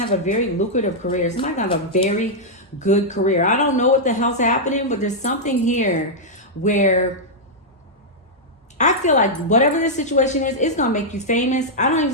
to have a very lucrative career. Somebody's going to have a very good career. I don't know what the hell's happening, but there's something here where I feel like whatever this situation is, it's going to make you famous. I don't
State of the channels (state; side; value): normal; both; correlation -0.06